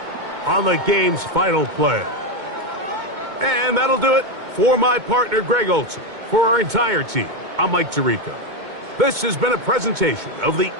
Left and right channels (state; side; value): late; left; 2.2 ms